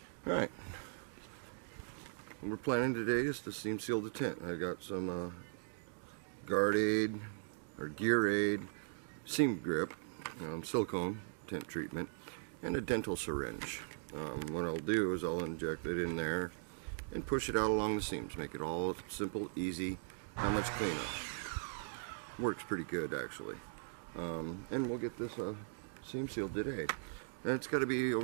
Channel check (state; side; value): silent; left; digital silence